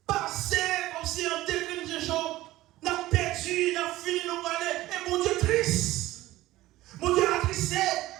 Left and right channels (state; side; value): quieter; left; 16.7 dB